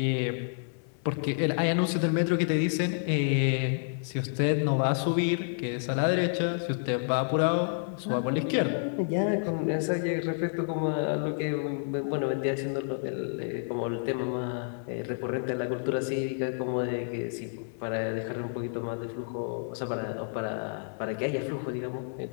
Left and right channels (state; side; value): silent; right; 58 dB below the other